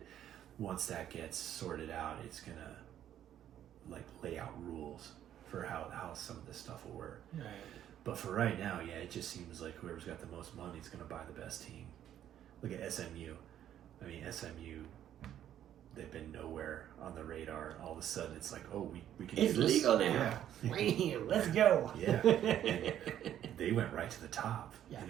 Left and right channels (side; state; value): left; quieter; 11.0 dB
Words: once that gets sorted out, it's going to like lay out rules for how some of this stuff will work. Right. But for right now, yeah, it just seems like whoever's got the most money is going to buy the best team. Look at SMU. I mean, SMU, they've been nowhere on the radar. All of a sudden, it's like, oh, we can It's do this. legal now. Yeah. Bam, let's go. Yeah. And they went right to the top Yeah.